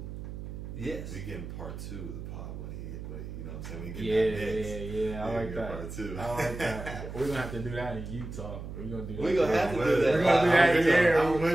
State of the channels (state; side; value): noise; right; hum, 9 dB below the sound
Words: Yes. We getting part 2 of the pod when you know what I'm saying? We getting that next. Yeah. I like that. Part 2. I like that. We're gonna have to do that in Utah. We're gonna do that. We gonna have to do that. We're gonna do that